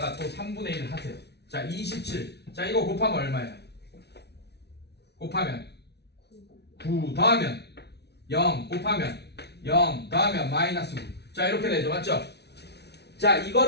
또 3분의 1 하세요. 자, 27. 자, 이거 곱하면 얼마예요? 곱하면 9 더하면 0 곱하면 0 더하면 마이너스 9. 자, 이렇게 되죠, 맞죠? 자,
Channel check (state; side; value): late; right; 0.49 ms